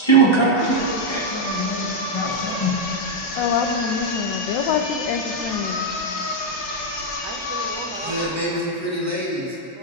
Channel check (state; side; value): normal; both; correlation 0.00